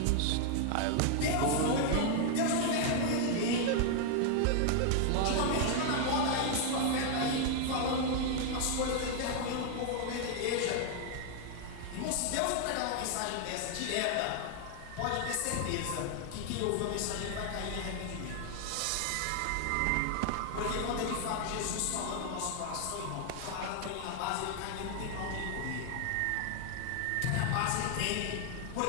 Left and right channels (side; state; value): both; different; correlation 0.00